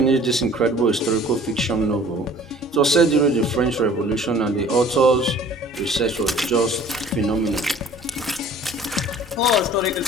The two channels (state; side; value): normal; both; correlation 0.50